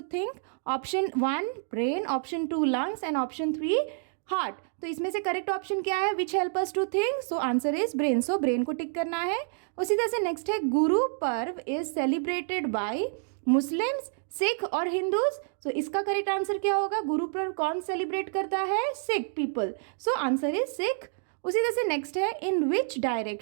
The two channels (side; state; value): left; silent; digital silence